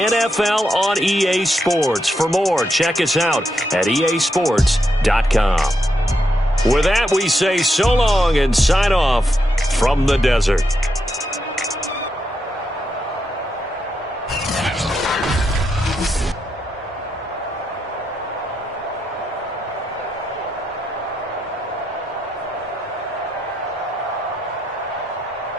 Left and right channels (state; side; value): normal; both; correlation 0.82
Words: on EA Sports. For more, check us out at easports.com. With that, we say so long and sign off from the desert.